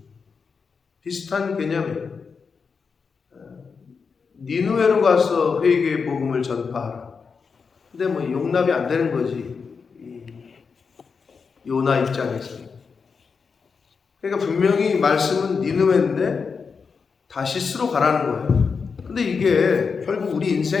비슷한 개념이에요. 니느웨로 가서 회개의 복음을 전파하라. 근데 용납이 안 되는 거지, 요나 입장에서. 그러니까 분명히 말씀은 니느웨인데 다시스로 가라는 거예요. 근데 이게 결국 우리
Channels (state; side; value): quieter; right; 5.4 dB